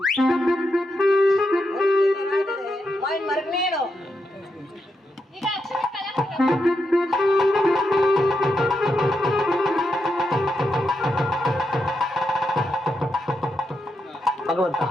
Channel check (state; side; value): normal; both; correlation 0.84